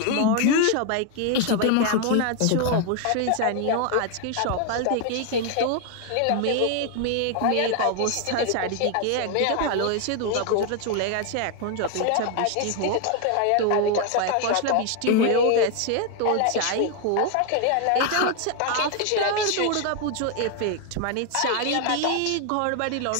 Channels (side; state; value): both; different; correlation 0.01